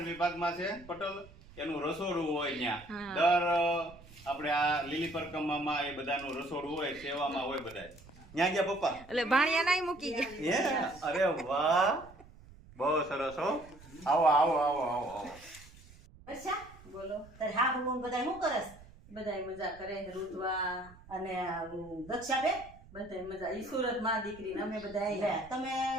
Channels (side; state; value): right; noise; rumble, 21 dB below the sound